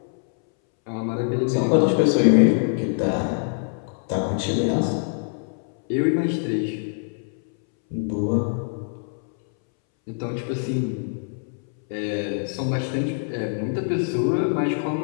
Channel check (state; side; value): silent; right; 62 dB below the other